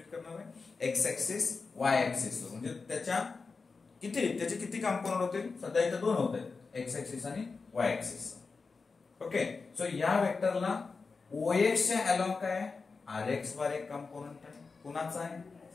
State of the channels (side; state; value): right; quieter; 4.5 dB